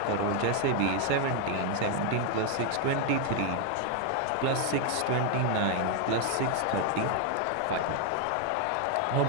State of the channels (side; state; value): both; different; correlation 0.01